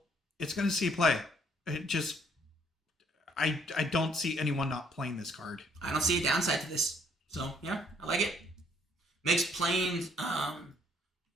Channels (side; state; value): both; normal; correlation 0.64